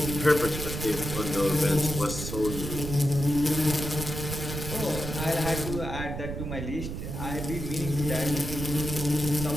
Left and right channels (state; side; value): noise; right; rumble, 5 dB below the sound